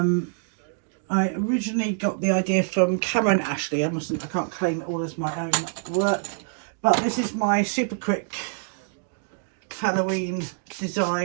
originally got the idea from Cameron Ashley. I can't claim it all as my own work, but this is my super quick Halloween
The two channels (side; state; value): left; silent; 61 dB below the other